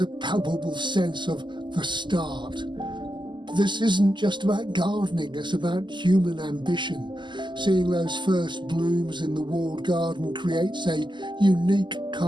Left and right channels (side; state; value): left; late; 0.22 ms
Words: a palpable sense of the start. This isn't just about gardening, it's about human ambition. Seeing those first blooms in the walled garden creates a unique